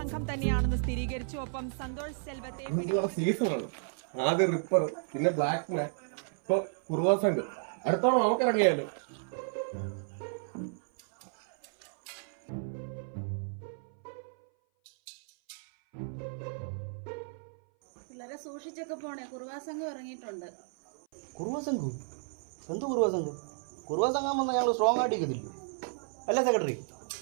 തന്നെയാണെന്ന് സ്ഥിരീകരിച്ചു. ഒപ്പം സന്തോഷ് സെൽവത്തെ സീസണാണ്. ആദ്യം റിപ്പർ, പിന്നെ ബ്ലാക്ക് മാൻ, ഇപ്പൊ കുറുവ സംഘം. അടുത്തോളം നമുക്ക് ഇറങ്ങിയാലോ? വളരെ സൂക്ഷിച്ചൊക്കെ പോണേ. കുറുവാ സംഘം ഇറങ്ങിയിട്ടുണ്ട്. കുറുവ സംഘം? എന്ത് കുറുവ സംഘം? കുറുവ സംഘം വന്നാൽ ഞങ്ങൾ സ്ട്രോങ് ആയിട്ട് ഇരിക്കത്തില്ല അല്ലേ സെക്രട്ടറി?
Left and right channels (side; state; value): left; silent; 56 dB below the other